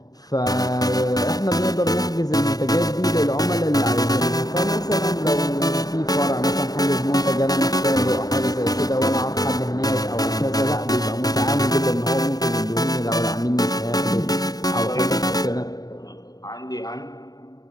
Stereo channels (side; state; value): right; late; 0.18 ms